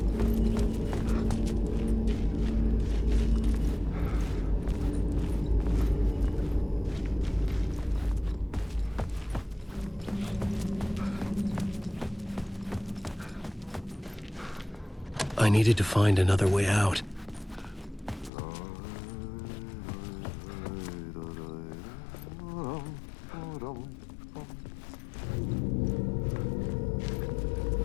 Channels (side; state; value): right; drops out; at 18.3 s